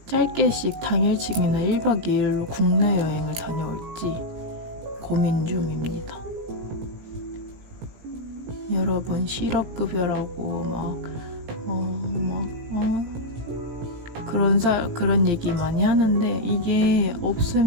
짧게씩 당일치기나 1박 2일로 국내 여행을 다녀올지 고민 중입니다. 여러분 실업급여라고 그런 얘기 많이 하는데 이게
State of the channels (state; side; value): late; left; 17 ms